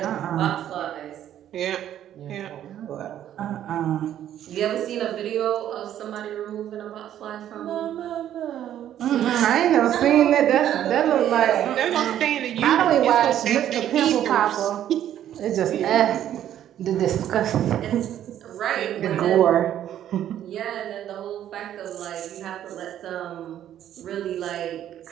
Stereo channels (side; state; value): left; quieter; 11.2 dB